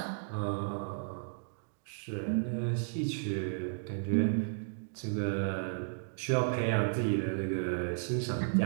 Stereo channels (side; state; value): left; silent; digital silence